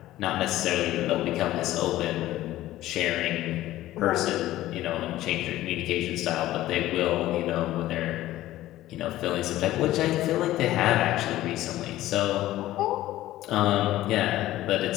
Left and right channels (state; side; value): quieter; right; 15.1 dB